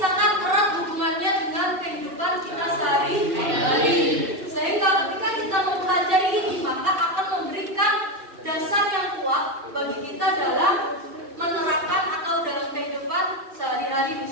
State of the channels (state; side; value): late; left; 2.7 ms